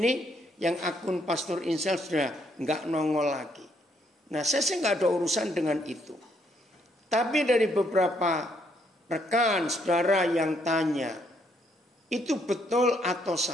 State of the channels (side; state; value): both; normal; correlation 0.71